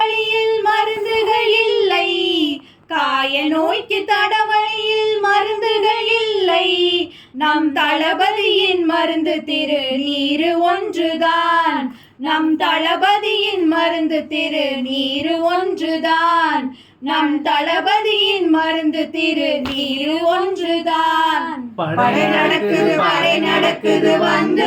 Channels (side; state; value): both; identical; correlation 1.00